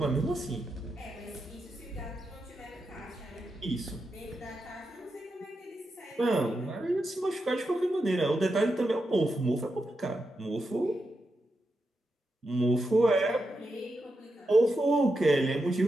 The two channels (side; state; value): both; normal; correlation 0.86